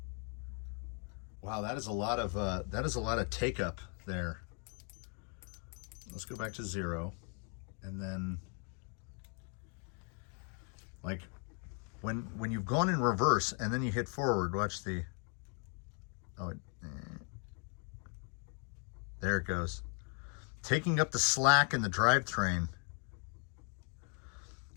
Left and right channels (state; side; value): quieter; right; 38.8 dB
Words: Wow, that is a lot of take up there. Let's go back to 0, and then like when you've gone in reverse and then you hit forward, watch the there it goes, taking up the slack in the drivetrain.